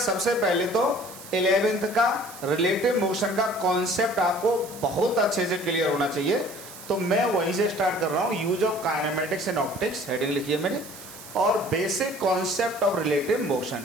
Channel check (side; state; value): right; noise; hiss, 16 dB below the sound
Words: पहले तो 11th का रिलेटिव मोशन का कॉन्सेप्ट आपको बहुत अच्छे से क्लियर होना चाहिए। तो मैं वहीं से स्टार्ट कर रहा हूँ। Use of kinematics and optics heading लिखी है मैंने, और basic concept of relative